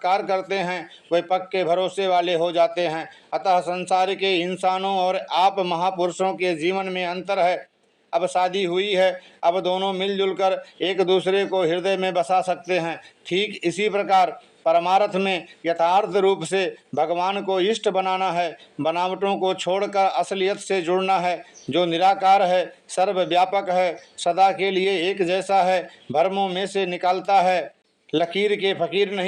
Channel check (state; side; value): identical; both; correlation 1.00